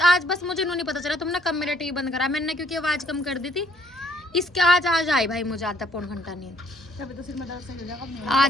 आज बस मुझे नहीं पता चला तुमने कब मेरा टीवी बंद करा। मैंने क्योंकि आवाज कम कर दी थी। इसके आज आई भाई मुझे आधा पौन घंटा नींद। तभी तो सिर में दर्द सही हो जाएगा।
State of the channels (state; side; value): normal; both; correlation 0.64